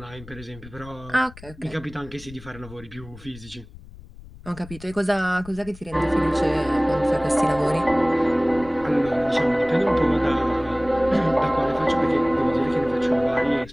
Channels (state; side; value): noise; left; rumble, 19 dB below the sound